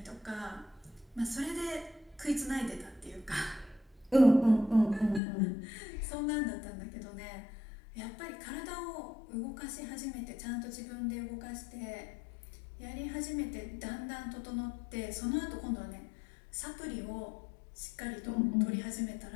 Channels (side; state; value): right; drops out; at 5.2 s